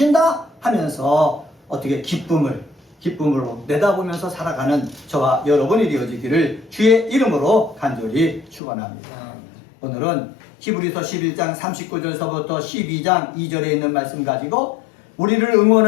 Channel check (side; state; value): right; drops out; at 8.6 s